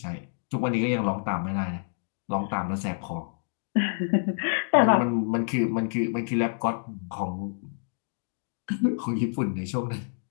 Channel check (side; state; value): right; silent; digital silence